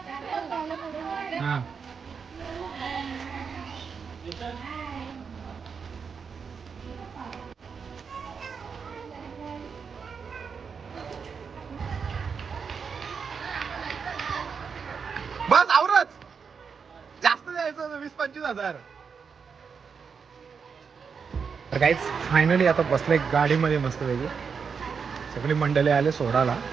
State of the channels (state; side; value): quieter; left; 6.0 dB